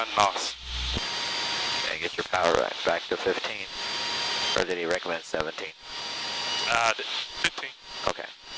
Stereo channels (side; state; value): both; identical; correlation 1.00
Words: Gnoss. Okay, get your power back to 15. Or did he recommend 17? 15. Okay. 10